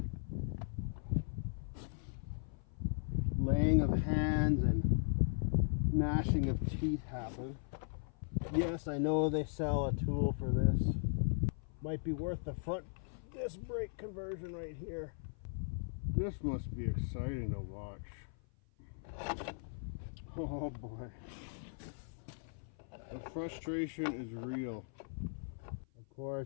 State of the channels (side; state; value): right; silent; 52 dB below the other